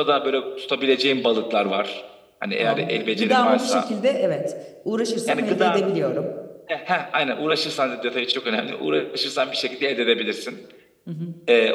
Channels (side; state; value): both; identical; correlation 1.00